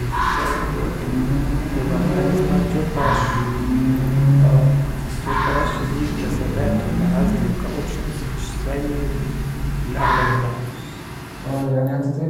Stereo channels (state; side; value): identical; both; correlation 1.00